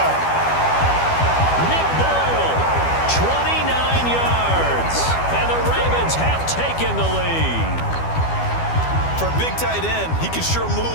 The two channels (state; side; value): late; right; 12 ms